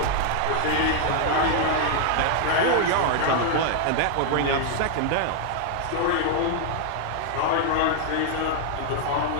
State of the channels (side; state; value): both; different; correlation 0.00